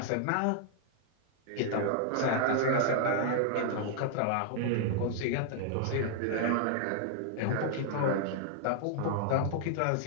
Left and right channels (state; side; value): different; both; correlation 0.00